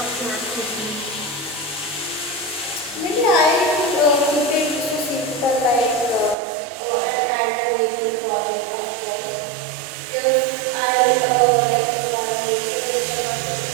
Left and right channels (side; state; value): left; drops out; at 6.4 s